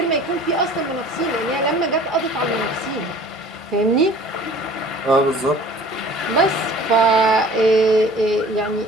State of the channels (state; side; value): normal; both; correlation 0.47